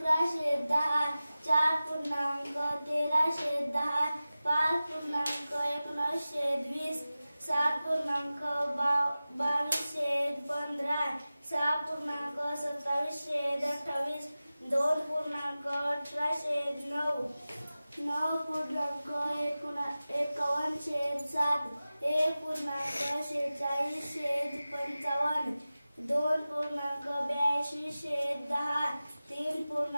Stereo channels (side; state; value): both; inverted; correlation -0.96